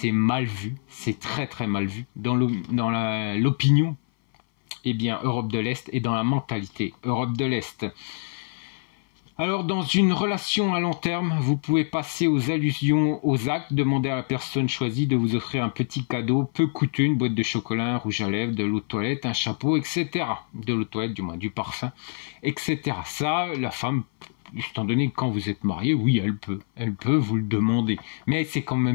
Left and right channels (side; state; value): right; silent; 59 dB below the other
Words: mal vu. C'est très très mal vu dans l'opinion Europe de l'Est et dans la mentalité Europe de l'Est. Alors, dans une relation à long terme, vous pouvez passer aux allusions, aux actes, demander à la personne choisie de vous offrir un petit cadeau peu coûteux, une boîte de chocolat, un rouge à lèvres, de l'eau de toilette, un chapeau, etc. De l'eau de toilette, du moins, du parfum, etc. Ça, la femme, étant donné que quand vous êtes marié, oui, elle peut vous le demander. Mais c'est quand